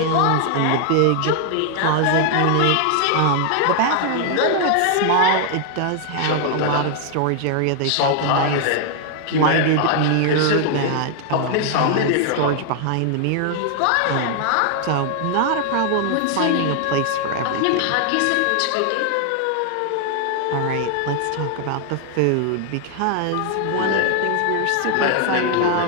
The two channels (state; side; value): different; both; correlation 0.00